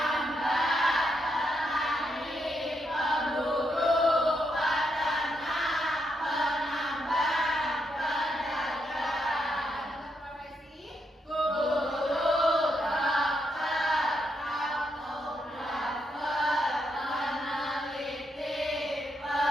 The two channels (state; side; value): normal; both; correlation 0.79